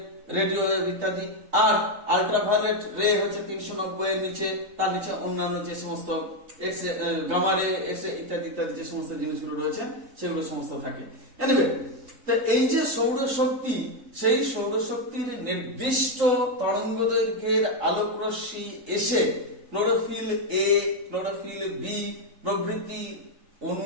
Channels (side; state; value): left; late; 3.8 ms